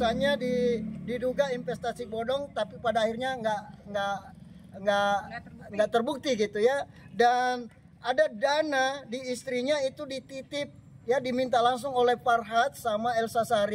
diduga investasi bodong, tapi pada akhirnya nggak terbukti gitu ya. Dan ada dana di istrinya itu dititip ya, diminta langsung oleh Farhad sama Elsa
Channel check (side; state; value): both; identical; correlation 1.00